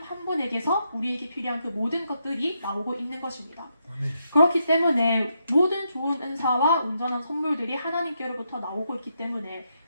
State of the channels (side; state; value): both; inverted; correlation -0.81